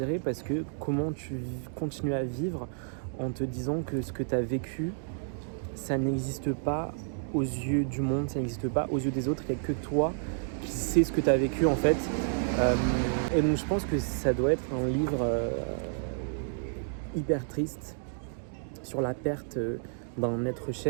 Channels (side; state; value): left; silent; digital silence